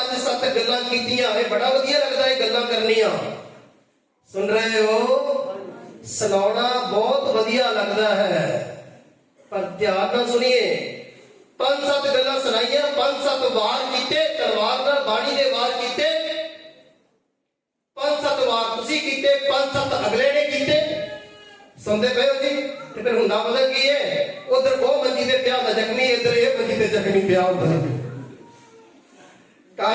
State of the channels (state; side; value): identical; both; correlation 1.00